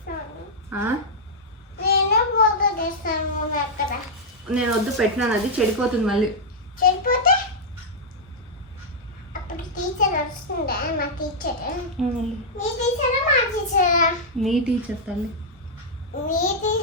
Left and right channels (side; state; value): both; normal; correlation -0.05